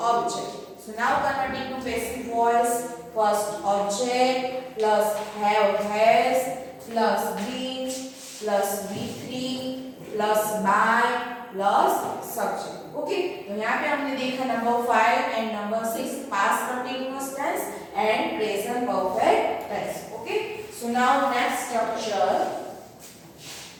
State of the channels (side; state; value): both; identical; correlation 1.00